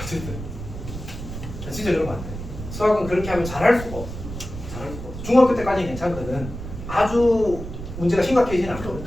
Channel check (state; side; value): noise; right; rumble, 9 dB below the sound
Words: 어쨌든 진짜 그러면 안 돼. 수학은 그렇게 하면 잘할 수가 없어. 잘할 수가 없어. 중학교 때까지는 괜찮거든. 아주 문제가 심각해지진 않거든.